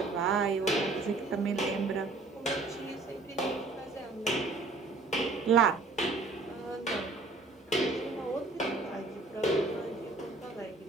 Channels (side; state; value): left; quieter; 3.5 dB